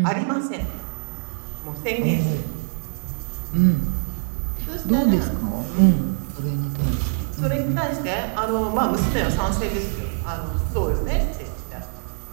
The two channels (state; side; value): silent; left; 62 dB below the other